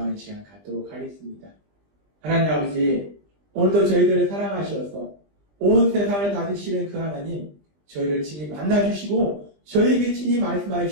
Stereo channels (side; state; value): left; late; 20 ms